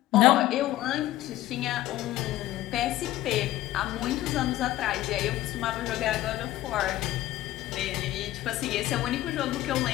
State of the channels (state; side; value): quieter; right; 15.2 dB